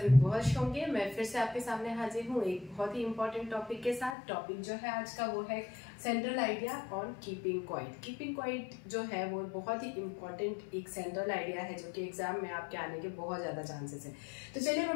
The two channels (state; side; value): drops out; right; at 4.2 s